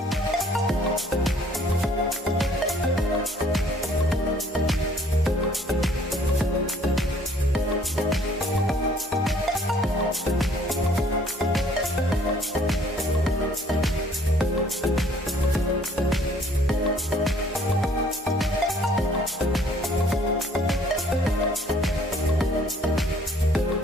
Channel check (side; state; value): both; normal; correlation 0.59